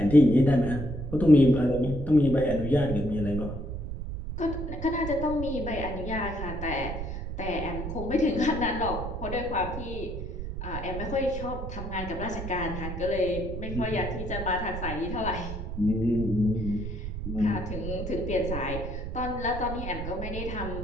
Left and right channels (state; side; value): noise; right; rumble, 6 dB below the sound